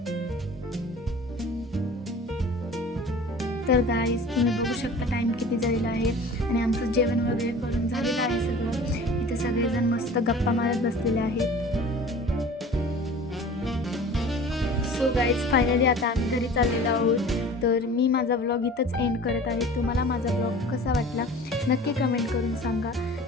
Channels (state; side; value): normal; both; correlation 0.43